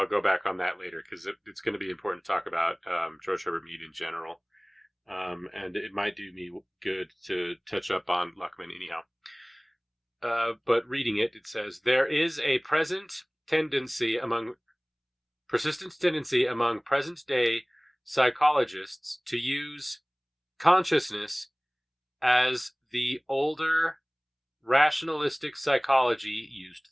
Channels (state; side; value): identical; both; correlation 1.00